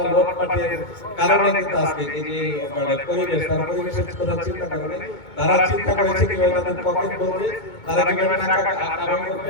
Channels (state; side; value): late; right; 2.2 ms